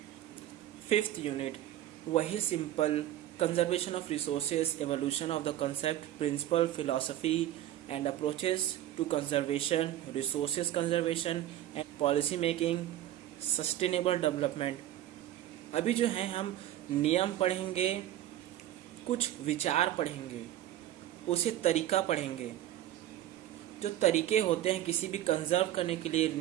5th यूनिट वही simple, conservation of resources, evolution of the concept, principle, philosophy and approaches to conservation, resources conservation and policy making, sustainable development। अभी जो है हम नियम पढ़ेंगे, कुछ विचार पढ़ेंगे, उसे तरीका पढ़ेंगे। जो तरीके होते हैं किसी भी कंजर्व करने के लिए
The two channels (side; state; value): left; quieter; 12.9 dB